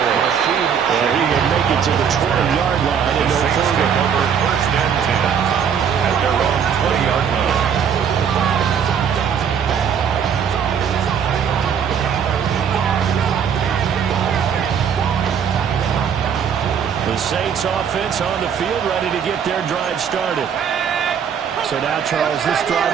And he will make it to the 20-yard line and no further. Over first and 10 at their own 20-yard line. The Saints offense on the field, ready to get their drive started. So now, Charles, this drive,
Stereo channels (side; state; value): left; quieter; 7.6 dB